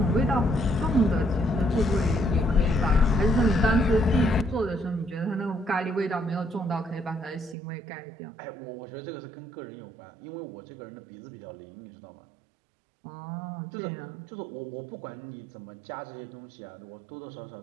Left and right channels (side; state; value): left; drops out; at 7.6 s